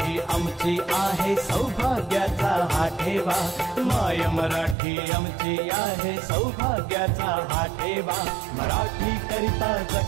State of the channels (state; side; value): drops out; left; at 4.8 s